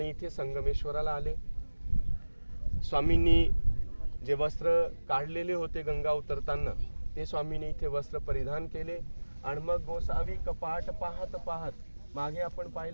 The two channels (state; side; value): inverted; both; correlation -1.00